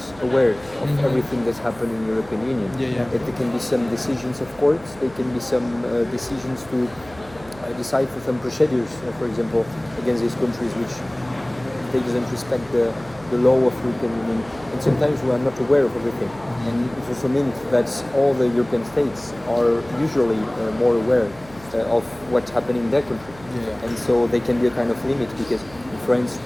aware of everything that's happened in the European Union. That there can be some decisions of courts, there can be some decisions to decide for some procedures, for example, against these countries which they doesn't respect the law of the European Union. And sometimes we are not aware of everything. And it also means that all the European states are usually more aware of what's happening in their country. And so they can be a kind of limit, because in France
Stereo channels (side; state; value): right; noise; hum, 21 dB below the sound